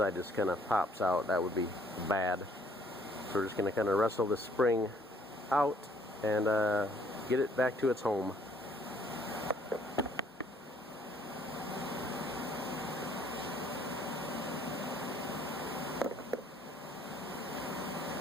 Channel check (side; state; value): both; normal; correlation 0.62